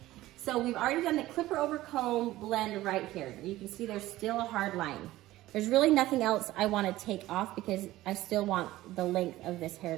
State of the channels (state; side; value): quieter; left; 16.3 dB